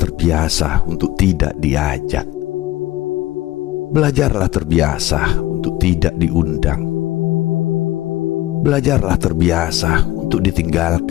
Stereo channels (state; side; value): quieter; right; 16.4 dB